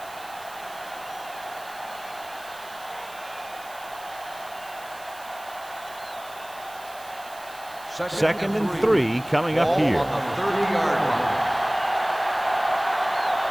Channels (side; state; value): right; noise; hiss, 19 dB below the sound